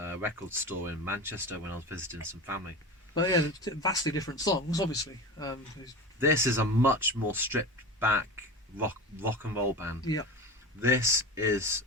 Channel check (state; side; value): normal; both; correlation 0.29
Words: record store in Manchester when I was visiting some family. But yeah, vastly different songs, obviously. This is a much more stripped back rock and roll band. Yeah. This is